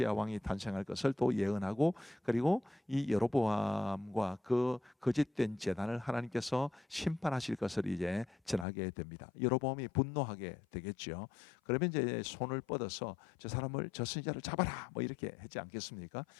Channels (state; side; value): drops out; right; at 8.7 s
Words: 왕이 탄생할 것을 또 예언하고, 그리고 이 여로보암과 그 거짓된 제단을 하나님께서 심판하실 것을 이제 전하게 됩니다. 여로보암이 분노하게 되겠죠. 그러면 이제 손을 뻗어서 저 사람을, 저 선지자를 잡아라 뭐 이렇게 했지 않겠습니까?